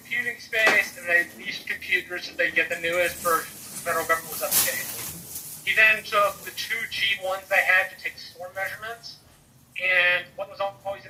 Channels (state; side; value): identical; both; correlation 1.00